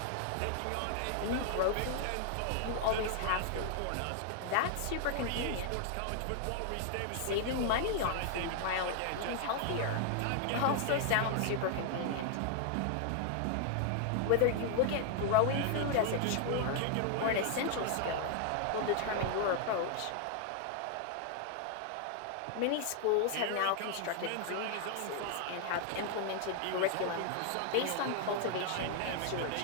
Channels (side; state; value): both; different; correlation 0.00